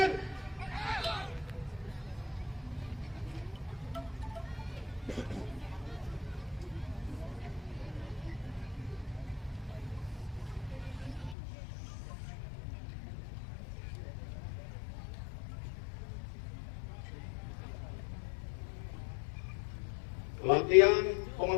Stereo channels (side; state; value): right; drops out; at 11.4 s